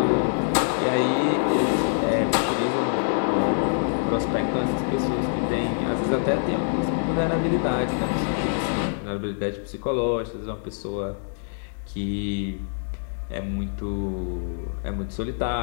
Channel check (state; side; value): silent; right; digital silence